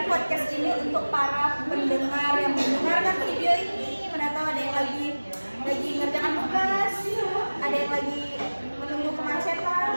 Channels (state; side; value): inverted; both; correlation -1.00